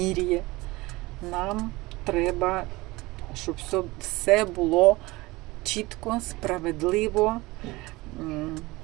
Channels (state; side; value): quieter; left; 21.4 dB